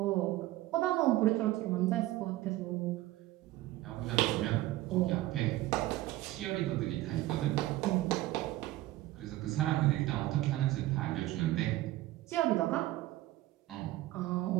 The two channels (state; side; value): quieter; left; 16.5 dB